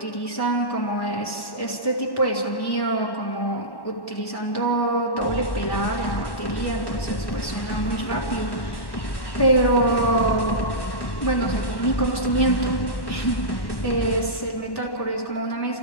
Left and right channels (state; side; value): late; right; 1.1 ms